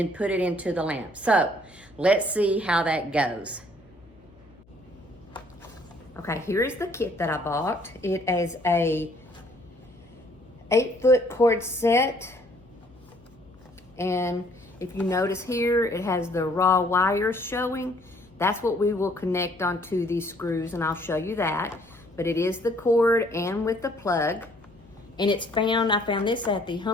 put it into the lamp. So let's see how that goes. Okay, here is the kit that I bought. It is a 8-foot cord set. And if you notice here, it has the raw wires showing. That's what we will connect onto these screws, and I'll show you that. But it is the cord and with the plug. And it's I found this at the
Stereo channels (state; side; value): noise; left; hum, 28 dB below the sound